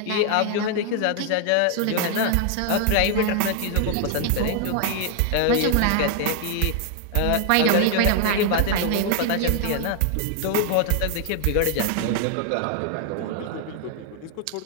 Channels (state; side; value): different; both; correlation 0.00